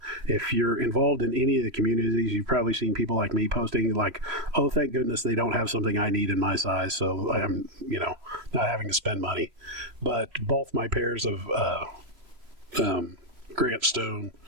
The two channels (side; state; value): left; late; 3.0 ms